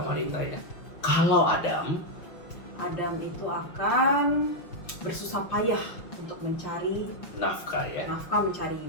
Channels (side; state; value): right; late; 5.9 ms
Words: wanita ya. Kalau Adam, Itu akan bersusah payah untuk mencari nafkah ya, nafkah, mencari